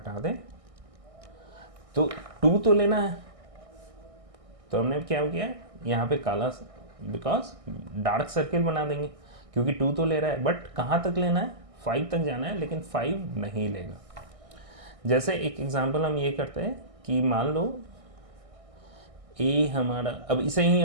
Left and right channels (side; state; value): left; late; 1.6 ms